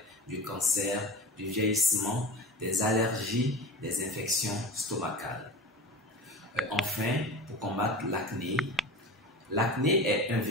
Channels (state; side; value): normal; both; correlation 0.32